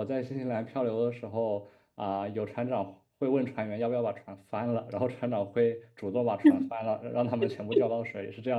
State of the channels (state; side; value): identical; both; correlation 1.00